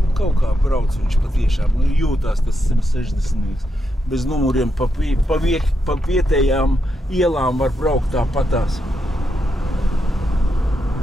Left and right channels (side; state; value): both; normal; correlation 0.83